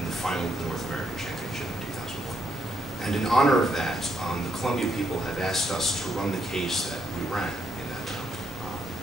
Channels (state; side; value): normal; both; correlation 0.76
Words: the final of the North American Championship in 2001. And in honor of that, the Columbia people have asked us to run the case that we ran in that round.